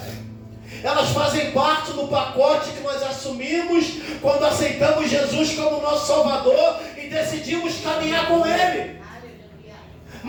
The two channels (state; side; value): identical; both; correlation 1.00